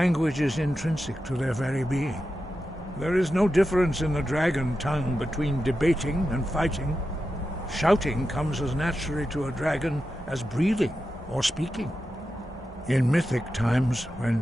is intrinsic to their very being. There is no difference in the dragon tongue between debating and fighting. Shouting comes as naturally to a dragon as breathing or speaking. In mythic times,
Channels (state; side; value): normal; both; correlation 0.90